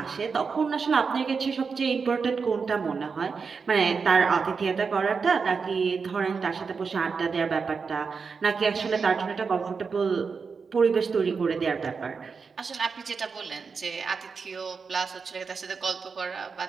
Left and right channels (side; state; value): left; quieter; 5.3 dB